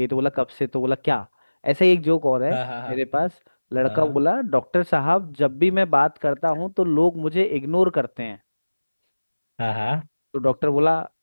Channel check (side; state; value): both; inverted; correlation -1.00